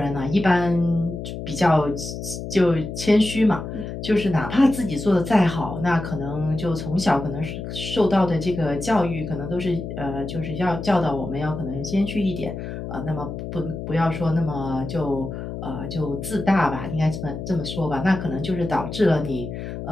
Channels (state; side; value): noise; left; hum, 7 dB below the sound